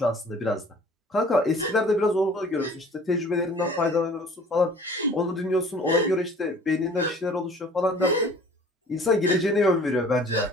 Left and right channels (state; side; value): normal; both; correlation 0.49